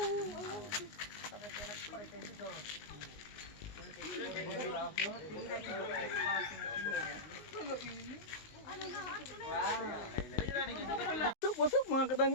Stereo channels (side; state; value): right; late; 19 ms